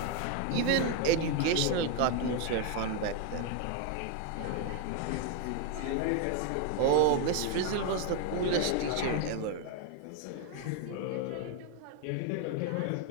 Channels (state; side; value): different; both; correlation 0.00